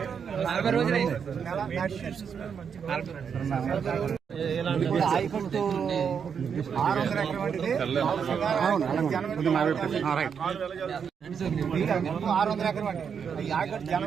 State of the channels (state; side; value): quieter; left; 7.0 dB